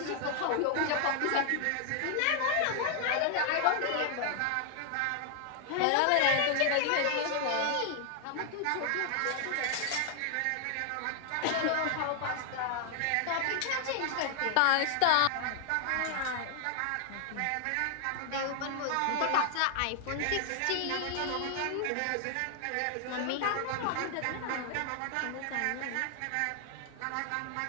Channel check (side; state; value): both; different; correlation 0.00